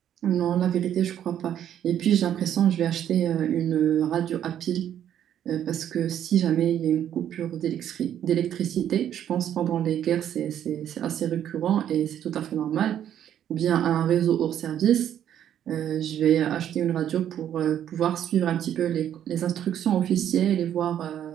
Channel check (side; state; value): left; quieter; 10.2 dB